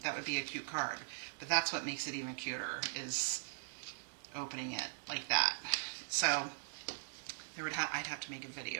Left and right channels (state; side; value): silent; left; digital silence